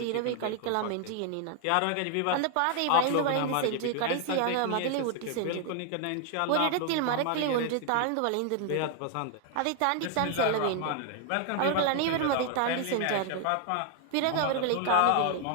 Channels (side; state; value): both; different; correlation 0.00